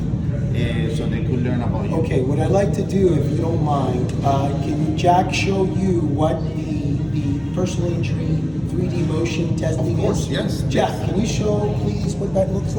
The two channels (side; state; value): left; noise; rumble, 23 dB below the sound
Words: so they could learn about you. Okay, what I'd like to do, if you don't mind, can Jack show you what the personal injury 3D motion testing Of course, is? yes. Jack, can you show please what that looks